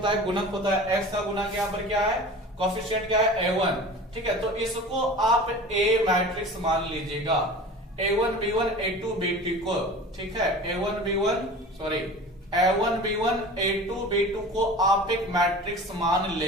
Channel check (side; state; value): both; normal; correlation 0.38